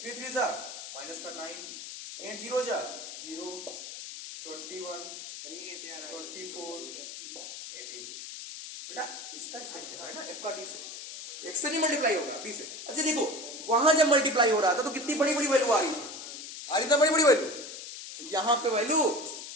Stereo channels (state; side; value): noise; left; hiss, 10 dB below the sound